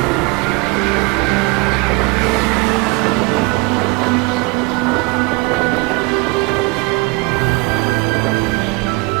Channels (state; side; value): quieter; left; 27.1 dB